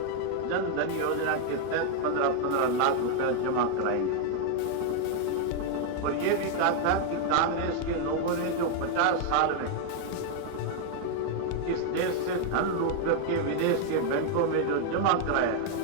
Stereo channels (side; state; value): both; different; correlation 0.00